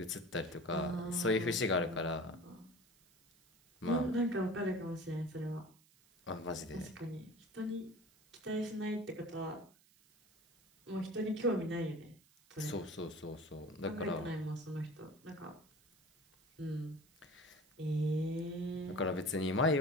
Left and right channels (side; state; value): right; noise; hiss, 29 dB below the sound